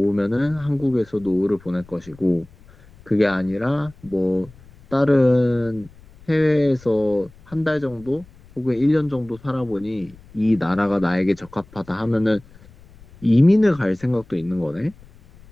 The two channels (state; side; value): noise; left; rumble, 24 dB below the sound